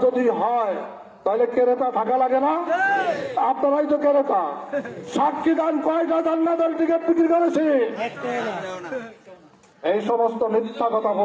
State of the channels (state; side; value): identical; both; correlation 1.00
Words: যদি হয় তাহলে ক্রেতা থাকা লাগে না? আপনারাই তো ক্রেতা। সাক্ষী দান, কয়টা জান্নাতের টিকিট বিক্রি করেছি? এই সমস্ত মিথ্যা